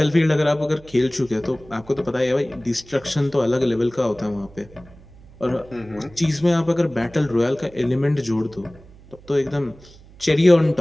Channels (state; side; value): noise; right; hum, 23 dB below the sound